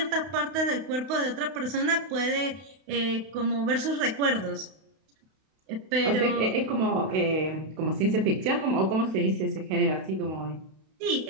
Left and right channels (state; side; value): late; left; 32 ms